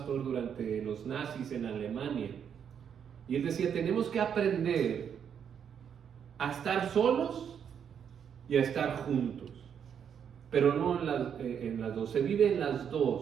durante los nazis en Alemania. Y él decía: tenemos que aprender a estar solos y a estar juntos, pero no en las dos. Se vive en las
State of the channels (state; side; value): quieter; left; 8.0 dB